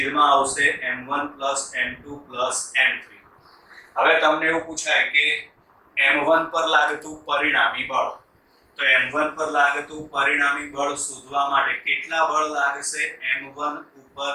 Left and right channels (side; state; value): both; identical; correlation 1.00